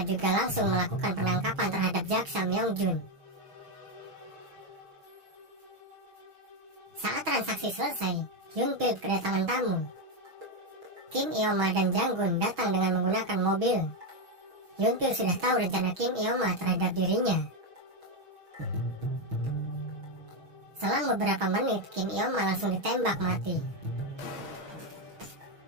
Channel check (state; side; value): late; left; 6.2 ms